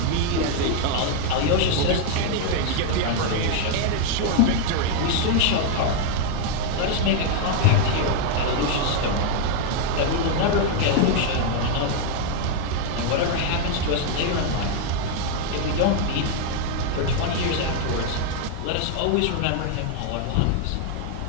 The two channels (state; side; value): different; both; correlation 0.00